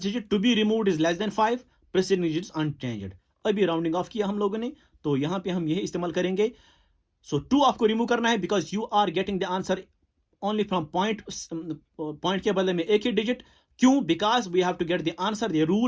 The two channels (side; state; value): both; identical; correlation 1.00